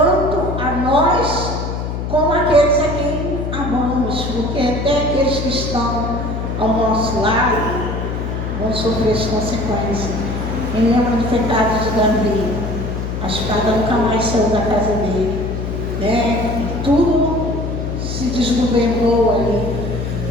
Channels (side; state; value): left; noise; hum, 4 dB below the sound